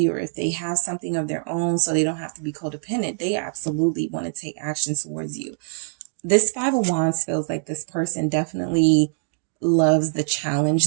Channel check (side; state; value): left; silent; digital silence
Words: or if they have something of their own so they don't have to be codependent, they absolutely want to take action towards you. This Five of Wands feels like this person definitely loves the